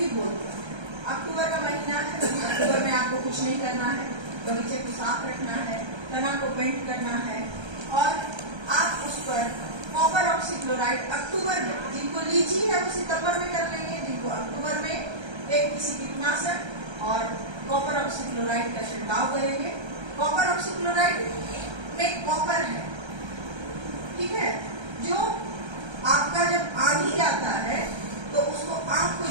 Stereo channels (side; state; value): left; late; 1.3 ms